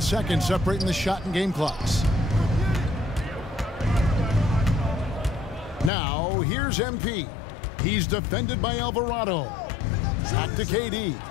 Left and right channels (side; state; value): right; drops out; at 5.9 s